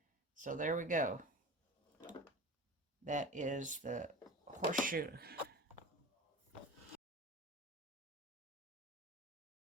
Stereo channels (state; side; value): normal; both; correlation 0.34